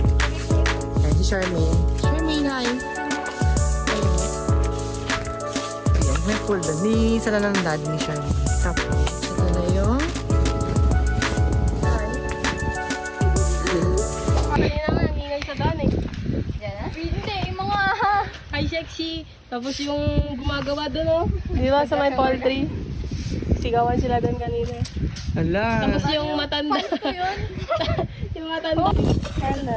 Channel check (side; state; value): both; identical; correlation 1.00